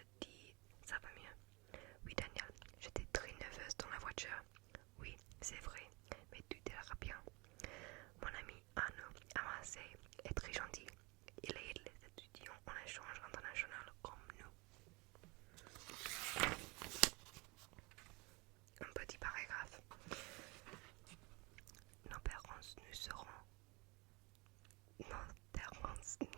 dis, ça va mieux. Oui Daniel, j'étais très nerveuse dans la voiture. Oui, c'est vrai, mais tout ira bien. Mon ami Arnaud Amassé est très gentil. Il aide les étudiants en échange international comme nous. Un petit paragraphe. Nos parents nous seront. Nos parents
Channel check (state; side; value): quieter; left; 26.7 dB